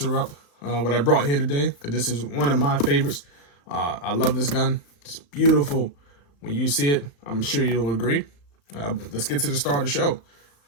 what I brought here today, because this is one of my favorites. I love this gun. It's beautiful. When you see it, I'm sure you'll agree. Let's get to the start of the show.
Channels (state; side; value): late; right; 35 ms